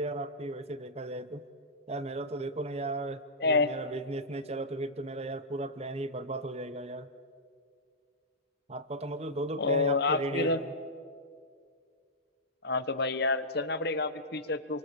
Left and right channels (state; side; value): normal; both; correlation -0.13